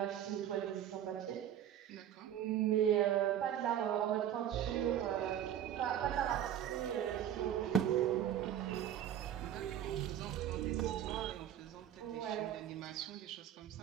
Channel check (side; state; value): left; quieter; 10.5 dB